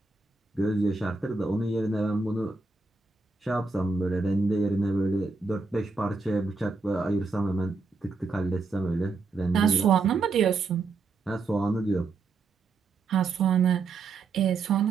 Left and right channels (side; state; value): left; quieter; 4.1 dB